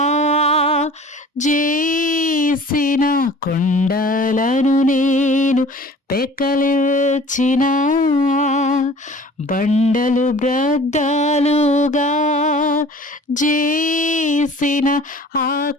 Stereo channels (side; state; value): both; normal; correlation 0.47